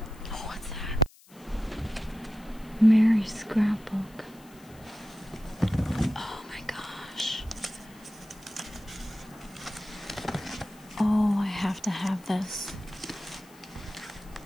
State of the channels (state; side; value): noise; left; hiss, 25 dB below the sound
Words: Oh, what's that? Mary's Scrapbook. Oh my gosh. Oh, I have to have this.